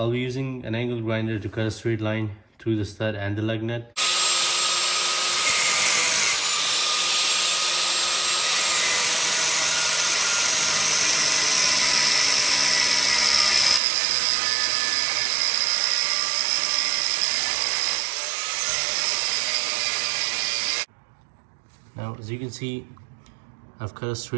be using an angle grinder to cut a straight line through the stud and the lug nut. Now, as you can see, I've cut a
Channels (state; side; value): drops out; left; at 13.8 s